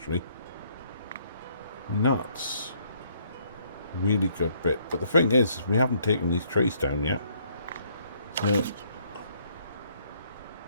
And that's a really good bit. But the thing is, we haven't taken these trees down yet. So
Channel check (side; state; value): both; inverted; correlation -0.66